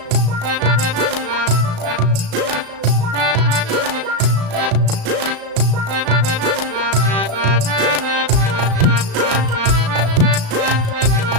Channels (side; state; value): left; late; 36 ms